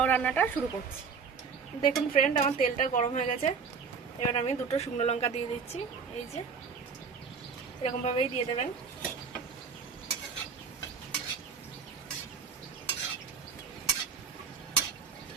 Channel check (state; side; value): quieter; left; 5.6 dB